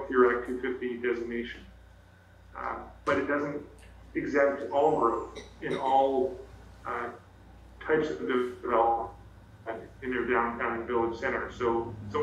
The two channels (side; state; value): both; identical; correlation 1.00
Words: through Act 250 designation. But it doesn't exempt all growth in all types of development in their downtown and village center. So it's